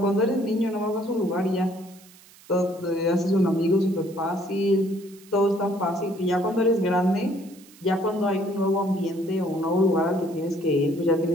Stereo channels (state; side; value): noise; right; hiss, 24 dB below the sound